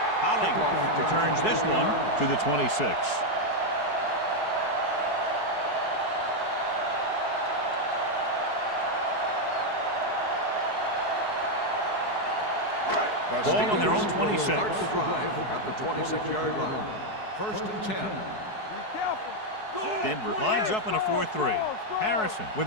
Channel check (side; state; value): right; late; 4.7 ms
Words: Holling returns this one to the 26. Ball on their own 26. Start the drive at the 26-yard line. First and 10. Denver lines up in a 4-3. Harrison